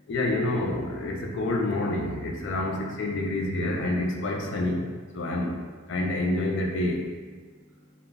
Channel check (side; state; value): both; normal; correlation 0.50